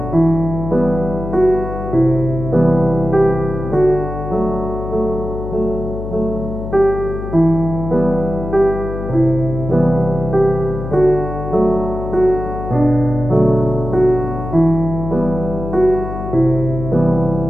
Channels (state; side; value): noise; left; hum, 7 dB below the sound